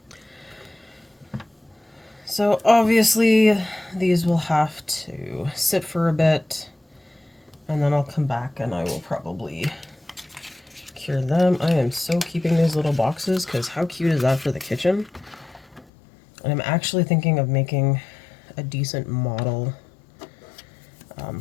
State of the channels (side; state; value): right; drops out; at 15.9 s